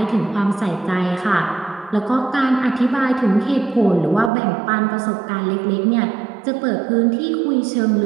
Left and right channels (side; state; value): left; drops out; at 4.3 s